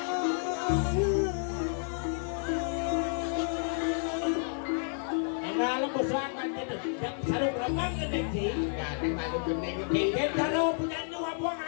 enggak lepas serangan gitu gak sarung berapa gede sih gak ada malu gede gede kalau punya nyawa buang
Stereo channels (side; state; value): right; silent; 57 dB below the other